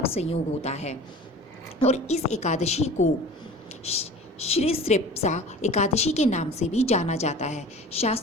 संयोग होता है। और इस एकादशी को श्री स्पेसा एकादशी के नाम से भी जाना जाता है।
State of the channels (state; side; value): normal; both; correlation 0.40